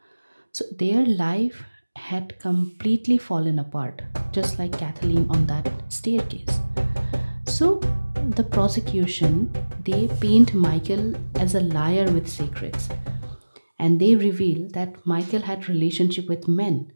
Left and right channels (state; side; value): inverted; both; correlation -1.00